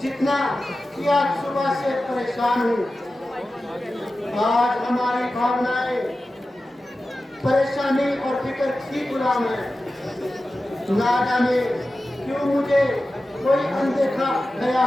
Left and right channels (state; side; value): normal; both; correlation 0.94